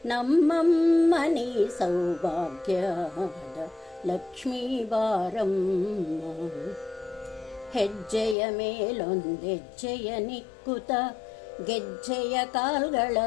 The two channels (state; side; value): drops out; right; at 8.3 s